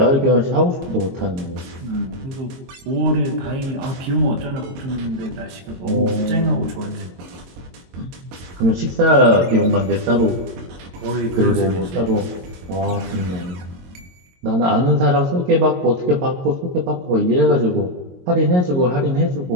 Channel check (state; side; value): late; left; 22 ms